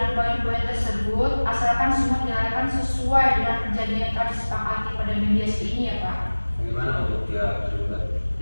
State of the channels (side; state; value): both; inverted; correlation -1.00